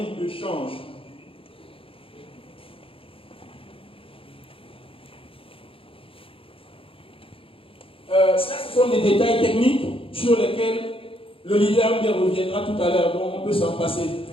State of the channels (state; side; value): late; right; 0.26 ms